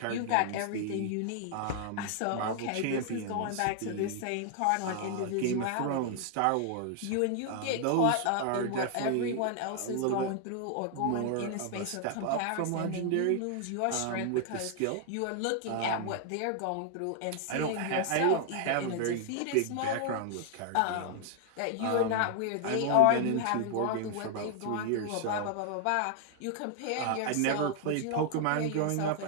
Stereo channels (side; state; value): both; different; correlation 0.00